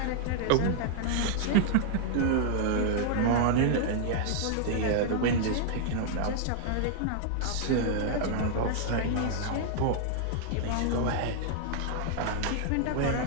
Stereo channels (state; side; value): different; both; correlation -0.01